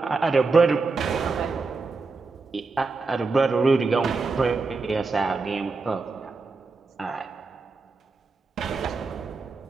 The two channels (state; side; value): quieter; left; 4.1 dB